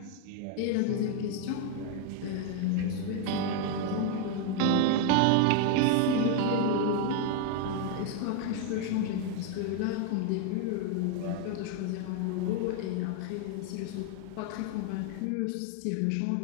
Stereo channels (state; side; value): different; both; correlation 0.01